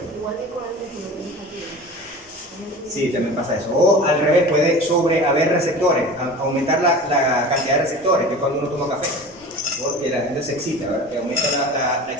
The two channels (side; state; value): both; normal; correlation 0.36